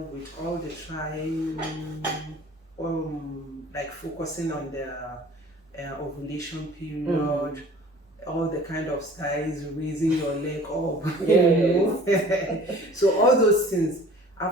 all the trying, like focusing on the ovulation period, all the kind of styles, raising your leg up, Yes. So all those things,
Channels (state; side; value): normal; both; correlation 0.47